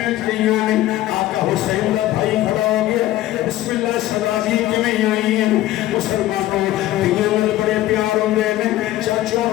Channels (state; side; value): quieter; right; 15.0 dB